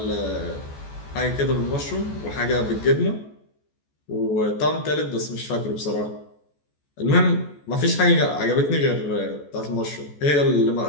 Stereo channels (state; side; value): late; right; 14 ms